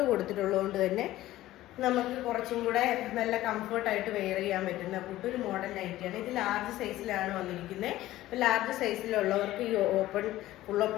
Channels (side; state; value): right; quieter; 15.5 dB